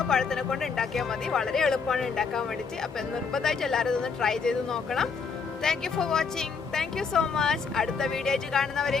പഴത്തിനെ കൊണ്ട് ഉണ്ടാക്കിയാൽ മതി. വളരെ എളുപ്പമാണ് ഉണ്ടാക്കാൻ വേണ്ടിയിട്ട്. അപ്പൊ നിർബന്ധമായിട്ട് എല്ലാവരും ഇതൊന്ന് ട്രൈ ചെയ്ത് നോക്കണം. Thank you for watching. Thank you so much. അടുത്ത വീഡിയോ ആയിട്ട്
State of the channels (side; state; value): right; quieter; 5.3 dB